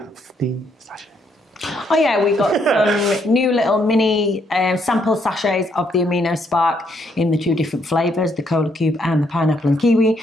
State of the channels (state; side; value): normal; both; correlation 0.73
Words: the sachet. Oh yeah, we got some new little mini sample sachets of the Amino Spark in the 2 different flavours, the Cola Cube and the pineapple and kiwi.